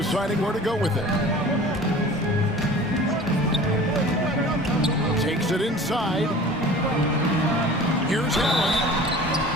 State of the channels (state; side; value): normal; both; correlation 0.42